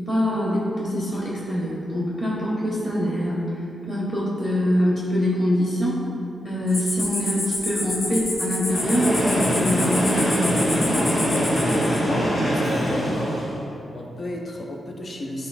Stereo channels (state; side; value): normal; both; correlation 0.86